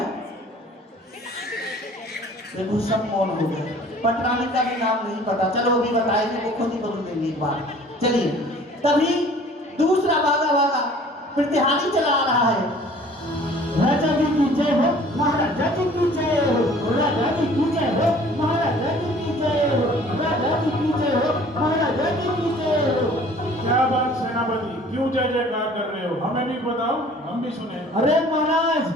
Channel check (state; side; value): normal; both; correlation 0.51